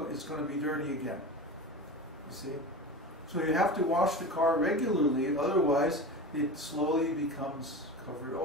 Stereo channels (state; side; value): normal; both; correlation 0.29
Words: to be dirty again. You see? So you have to wash the car regularly, otherwise it slowly becomes covered